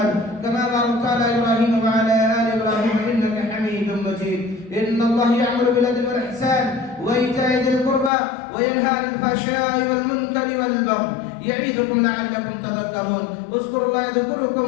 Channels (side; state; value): right; drops out; at 8.1 s